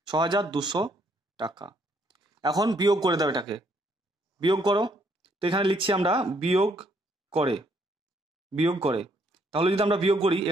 6,200 টাকা। এখন বিয়োগ করে দাও, এটাকে বিয়োগ করো। তো এখানে লিখছি আমরা বিয়োগ করে, বিয়োগ করে। তাহলে যদি আমরা বিয়োগ করি,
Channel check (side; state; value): both; normal; correlation 0.69